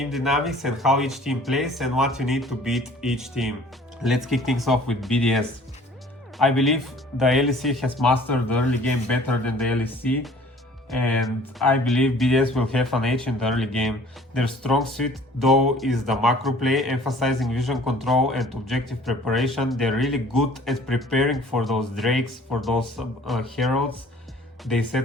dynamics and how each team plays and what you need to beat each team. Let's kick things off with BDS. I believe the LEC has mastered the early game better than the LEC, and I believe BDS will have an edge in the early game. Their strong suit though is the macro play, emphasizing vision control and objective preparation. They're really good at preparing for those drakes, for those heralds. They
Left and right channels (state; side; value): normal; both; correlation 0.52